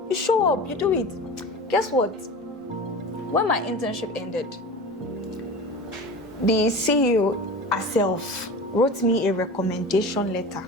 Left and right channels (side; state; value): both; normal; correlation 0.33